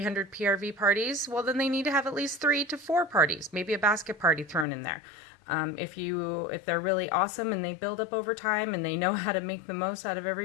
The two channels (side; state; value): right; drops out; at 4.7 s